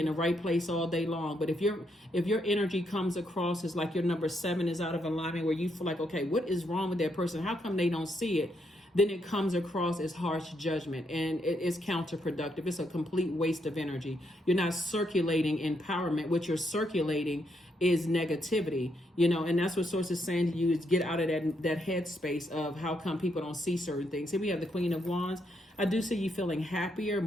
in the right place all day long, but if your energy comes across as like your number 7 is out of alignment, where you feel like, okay, what is wrong with that person? How come they don't see it? Then it comes across as harsh judgment, and it is counterproductive. It's a complete waste of energy. You're not circulating empowerment. What you're circulating is negativity, and that's what Source is saying to you, is get out of that headspace of how come people don't see certain things. Here we have the Queen of Wands. I do see you feeling happier,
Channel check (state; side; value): normal; both; correlation 0.77